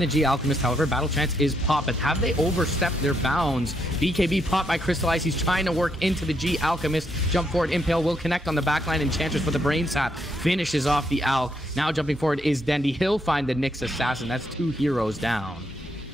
the G Alchemist, however, Battle Chance is popped, but have they overstepped their bounds? BKB popped by Crystallize. He's trying to work into the G Alchemist. Jump forward, Impale will connect on the backline. Enchantress with the Brain Sap finishes off the Alch. Now jumping forward is Dendi. He'll find the Nyx Assassin. That's 2 heroes down.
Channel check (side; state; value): both; normal; correlation 0.76